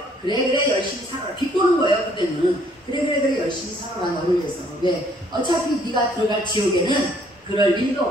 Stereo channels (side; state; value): both; normal; correlation 0.63